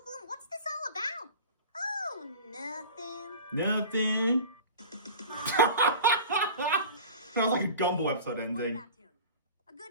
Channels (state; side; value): inverted; both; correlation -0.37